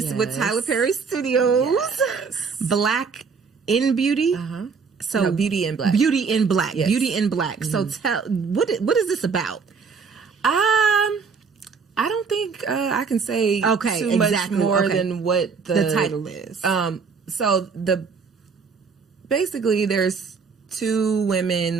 with Tyler Perry Studios, Black in Beauty. So Beauty in Black. Beauty in Black. Yes. Beauty in Black. So tell, what is this about? I don't think I can say too much more than what the title is. So basically there's two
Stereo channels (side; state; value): left; quieter; 5.3 dB